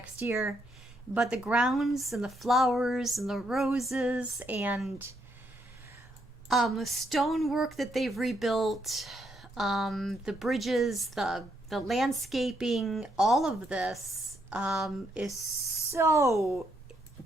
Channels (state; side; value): normal; both; correlation 0.76